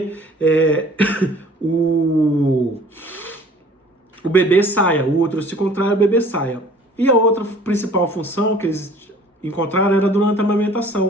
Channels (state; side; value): normal; both; correlation 0.51